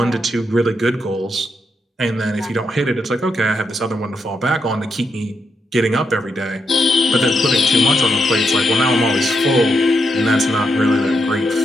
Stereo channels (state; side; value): normal; both; correlation 0.81